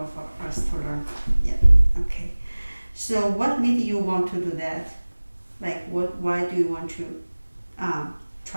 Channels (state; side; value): inverted; both; correlation -1.00